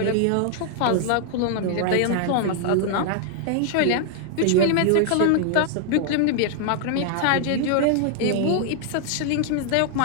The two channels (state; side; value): different; both; correlation 0.00